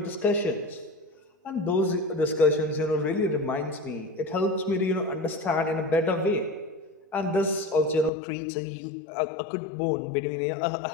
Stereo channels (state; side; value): drops out; right; at 8.1 s